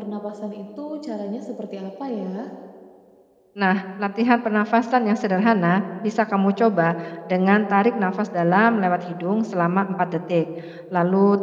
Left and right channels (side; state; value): both; identical; correlation 1.00